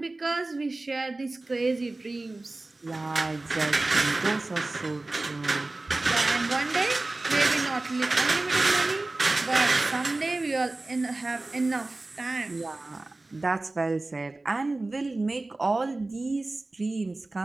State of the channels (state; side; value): quieter; left; 3.0 dB